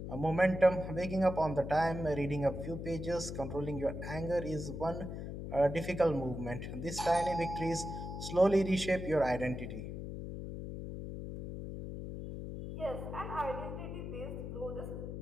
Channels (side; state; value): left; noise; hum, 7 dB below the sound